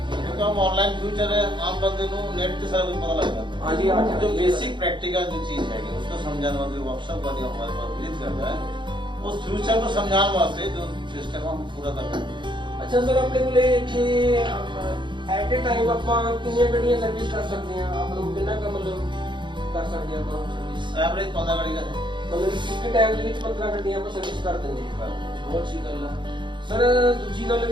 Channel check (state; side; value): late; left; 0.23 ms